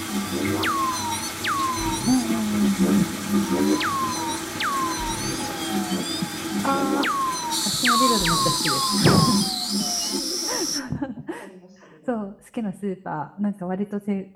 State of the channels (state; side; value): identical; both; correlation 1.00